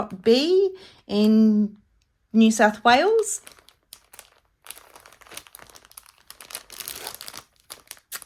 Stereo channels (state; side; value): identical; both; correlation 1.00